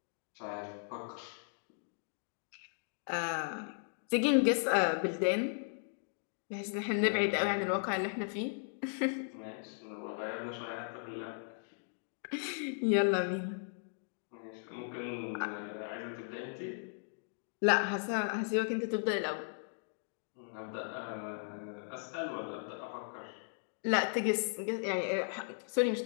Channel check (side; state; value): right; silent; digital silence